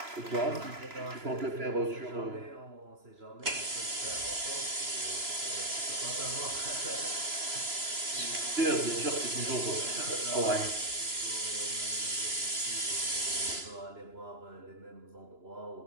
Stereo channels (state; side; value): late; left; 2.9 ms